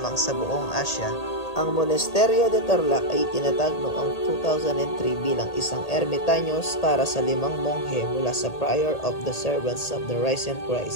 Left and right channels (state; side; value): late; right; 1.8 ms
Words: sa buong Asya. Ang Monasterio de Tarlac ay tinatag noong 2003 bilang isang ermitaños para sa 5 monghe mula sa Prior of the Servants of the Risen